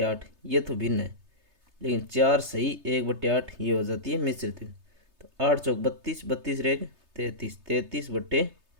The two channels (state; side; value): late; left; 3.3 ms